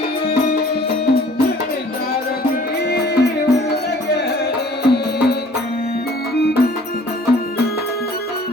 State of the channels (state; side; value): normal; both; correlation 0.53